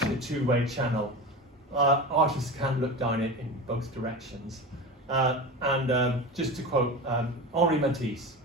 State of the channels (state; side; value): normal; both; correlation 0.28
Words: a two-way channel. artists can look down it in both directions. Just to quote Henri Matisse,